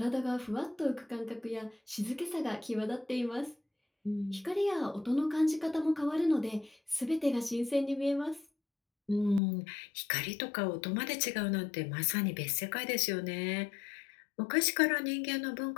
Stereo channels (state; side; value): drops out; right; at 9.4 s